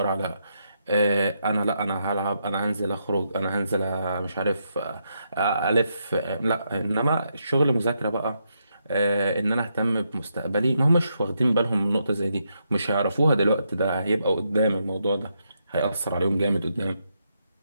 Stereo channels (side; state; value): both; inverted; correlation -0.80